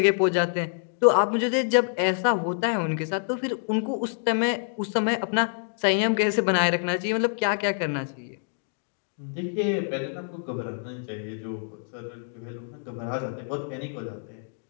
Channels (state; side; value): silent; right; digital silence